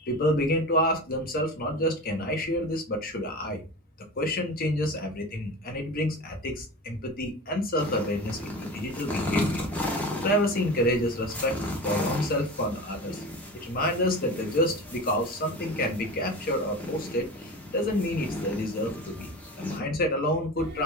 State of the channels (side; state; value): both; normal; correlation 0.31